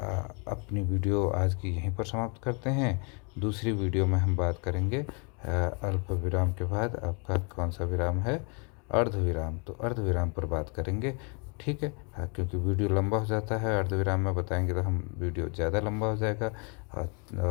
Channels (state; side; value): quieter; right; 35.3 dB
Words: अपनी वीडियो आज की यहीं पर समाप्त करते हैं। दूसरी वीडियो में हम बात करेंगे अल्प विराम के बाद आपका कौन सा विराम है, अर्ध विराम। तो अर्ध विराम पर बात करेंगे। ठीक है, क्योंकि वीडियो लंबा हो जाता है, अर्ध विराम में बताएंगे तो हम वीडियो ज़्यादा लंबा हो जाएगा।